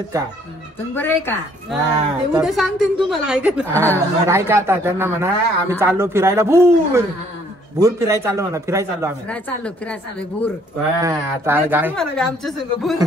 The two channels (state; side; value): normal; both; correlation 0.62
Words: का? तुम्ही बरं आहे का? ते उद्या सांगते तुम्हाला आहे का ऐका आता त्यांना म्हणा आम्ही चाललो फिरायला भूर भूर फिरायला चाललो म्हणा. फिरायला चाललो आम्ही. फिरायला चाललो भूर. आता गाय आमच्या संग भूर.